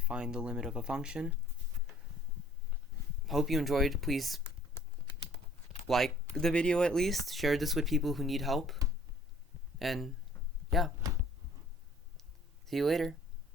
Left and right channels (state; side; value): normal; both; correlation 0.55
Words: the limit of a function. Hope you enjoyed. Please like the video at least. Share this with people who need help. And yeah. See you later.